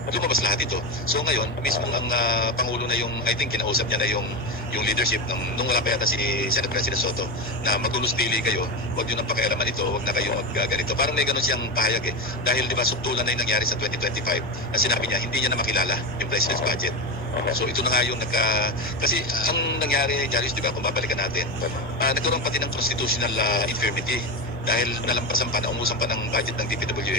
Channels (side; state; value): both; normal; correlation 0.16